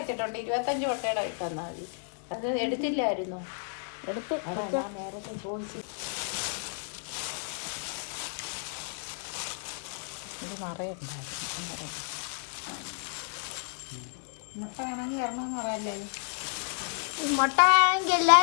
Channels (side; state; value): right; silent; digital silence